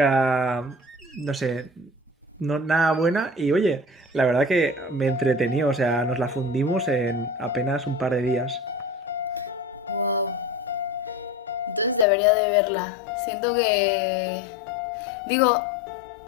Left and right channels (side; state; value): right; drops out; at 12.1 s